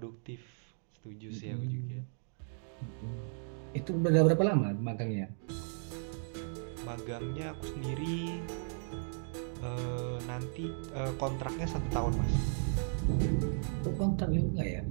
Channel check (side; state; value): left; silent; digital silence